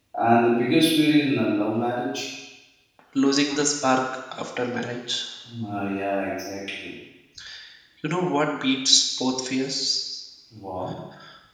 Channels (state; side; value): identical; both; correlation 1.00